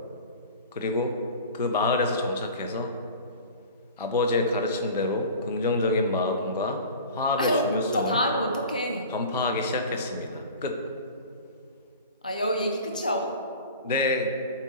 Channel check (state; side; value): inverted; both; correlation -0.38